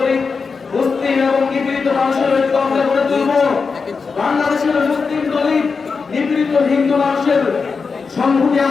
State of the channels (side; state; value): right; quieter; 5.0 dB